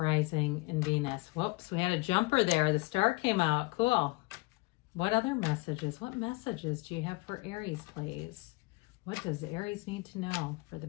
and Venus. Whoops, we had a jumper there. The star came out. Cool. What other messages? What messages do you have for Aries, please? What does Aries need to know for the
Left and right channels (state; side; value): quieter; right; 24.6 dB